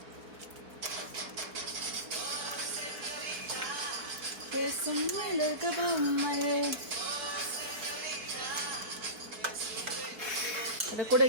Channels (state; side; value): late; left; 4.6 ms